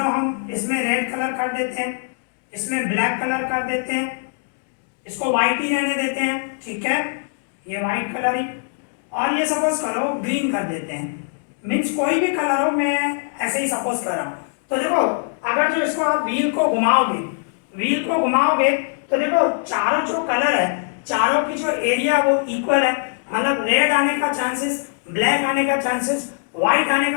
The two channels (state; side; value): silent; right; digital silence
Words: हम इसमें रेड कलर कर देते हैं, इसमें ब्लैक कलर कर देते हैं, इसको व्हाइट ही रहने देते हैं, ठीक है, ये व्हाइट कलर ही, और ये सपोज करो ग्रीन कर देते हैं। मीन्स कोई भी कलर हो, मैं ऐसे ही सपोज कर रहा हूँ। तो देखो अगर जो इसको आप व्हील को घुमाओगे, व्हील को घुमाओगे तो देखो चारों जो कलर है, चारों की जो एरिया वो इक्वल है। मतलब रेड आने का चांसेस, ब्लैक आने का चांसेस, व्हाइट आने